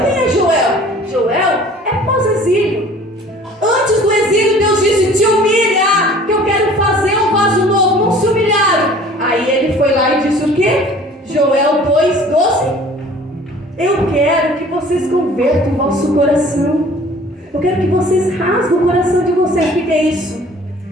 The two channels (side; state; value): both; normal; correlation 0.49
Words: Quem é Joel? Joel é pós-exílio. Antes do exílio, Deus disse: te humilha, que eu quero fazer um vaso novo. Não se humilharam. Aí ele foi lá e disse o quê? Joel 2:12. Eu quero que vocês convertam o vosso coração. Eu quero que vocês rasguem o coração de vocês. O que é isso?